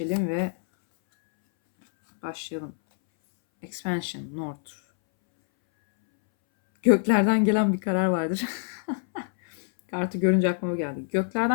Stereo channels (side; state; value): right; silent; 61 dB below the other